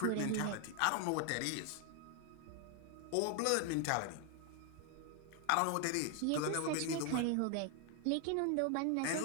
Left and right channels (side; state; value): both; different; correlation 0.01